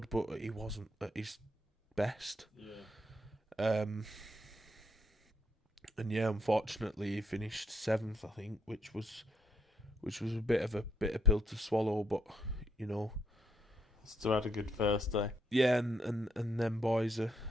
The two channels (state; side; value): normal; both; correlation 0.74